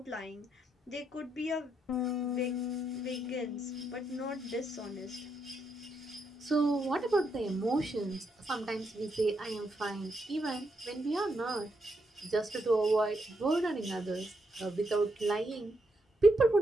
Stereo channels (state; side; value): normal; both; correlation 0.79